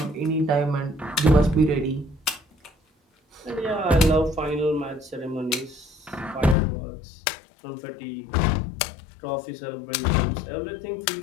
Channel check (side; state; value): right; drops out; at 6.6 s